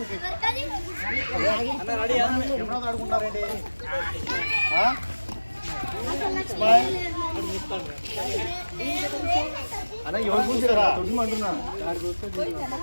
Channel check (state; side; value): inverted; both; correlation -1.00